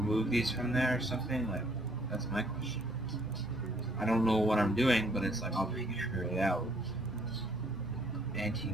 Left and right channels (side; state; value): both; normal; correlation 0.64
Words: these from there or something? Like that's my question. I don't know what I'm doing, but it's like I'll figure it out.